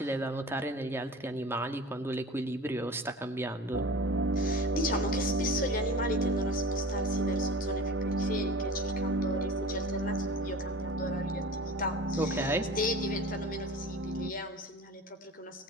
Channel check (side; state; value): both; normal; correlation 0.37